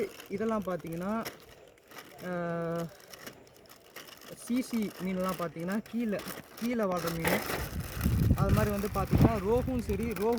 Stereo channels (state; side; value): identical; both; correlation 1.00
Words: இதெல்லாம் பார்த்திங்கன்னா சிசி மீன்லாம் பார்த்திங்கன்னா கீழே வாழ்கிற மீன். அது மாதிரி வந்து பார்த்திங்கன்னா ரோகும் சரி,